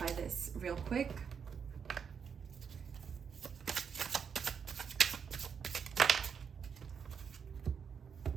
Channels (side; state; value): left; quieter; 6.8 dB